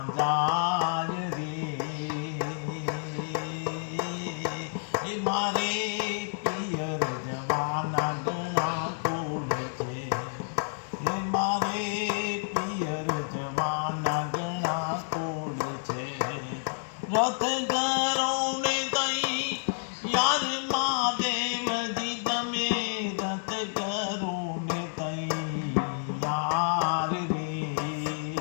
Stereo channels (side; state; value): right; silent; digital silence